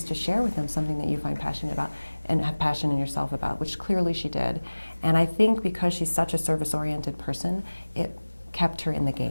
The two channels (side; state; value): both; inverted; correlation -1.00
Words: to share with them something that you find passionate about and have passion in yourself about, which clearly she did. And I think because she's such a service-oriented person, it kept her in the